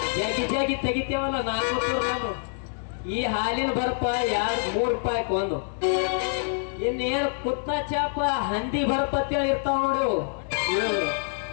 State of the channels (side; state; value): right; silent; 57 dB below the other